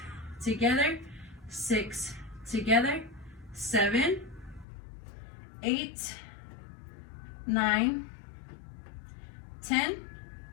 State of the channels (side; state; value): right; drops out; at 4.7 s